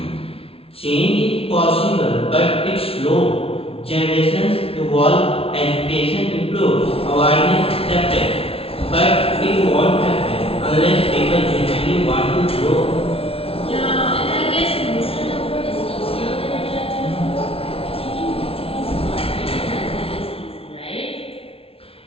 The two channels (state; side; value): late; right; 0.27 ms